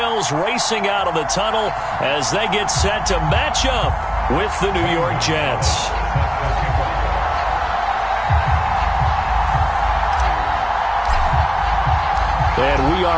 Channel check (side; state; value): both; identical; correlation 1.00